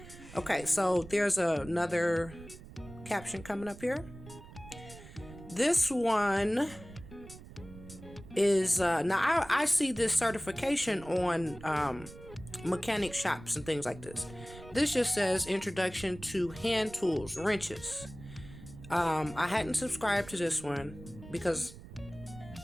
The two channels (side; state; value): right; noise; rumble, 16 dB below the sound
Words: Okay, so there's another caption coming up here. This one is now I see this certification on mechanic shops and things like this. This just says introduction to hand tools, wrenches. I hadn't subscribed to this one because